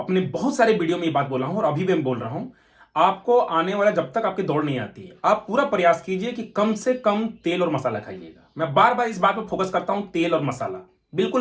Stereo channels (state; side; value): identical; both; correlation 1.00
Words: बहुत सारे वीडियो में ये बात बोला हूं और अभी भी मैं बोल रहा हूं, आपको आने वाला, जब तक आपकी दौड़ नहीं आती है, आप पूरा प्रयास कीजिए कि कम से कम तेल और मसाला खाइएगा। मैं बार बार इस बात पर फोकस करता हूं, तेल और मसाला